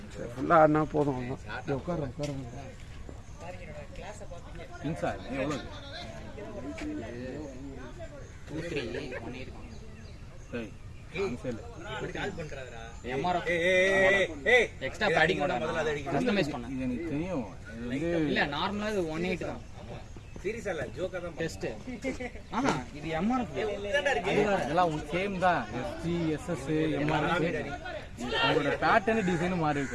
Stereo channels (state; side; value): identical; both; correlation 1.00